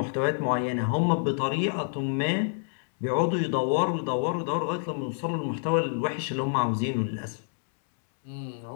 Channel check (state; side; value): silent; right; 60 dB below the other